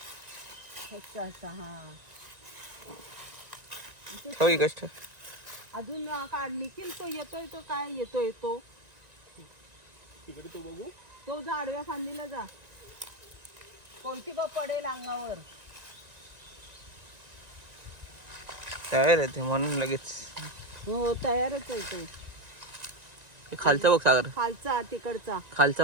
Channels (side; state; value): left; late; 1.9 ms